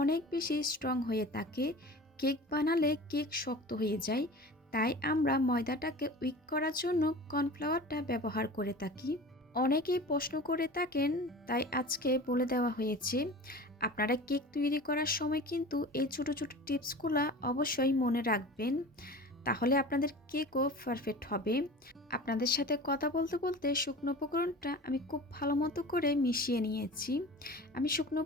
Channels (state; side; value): normal; both; correlation 0.37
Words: অনেক বেশি স্ট্রং হয়ে থাকে। কেক বানালে কেক শক্ত হয়ে যায়, তাই আমরা ময়দাটাকে উইক করার জন্য কর্নফ্লাওয়ারটা ব্যবহার করে থাকি। অনেকেই প্রশ্ন করে থাকেন, তাই আজকে বলে দেওয়া হয়েছে। আপনারা কেক তৈরি করার সময় কিন্তু এই ছোটো ছোটো টিপসগুলো অবশ্যই মনে রাখবেন, তাহলে আপনাদের কেকও পারফেক্ট হবে। আপনাদের সাথে কথা বলতে বলতে শুকনো উপকরণটা আমি খুব ভালো মতো করে মিশিয়ে নিয়েছি। আমি শুকনো